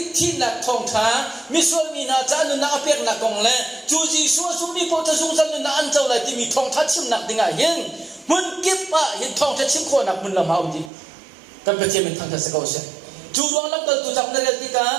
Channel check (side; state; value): left; drops out; at 10.9 s